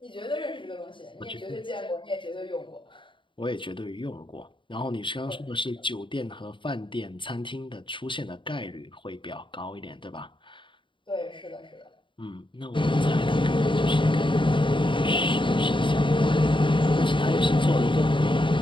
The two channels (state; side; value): late; right; 0.24 ms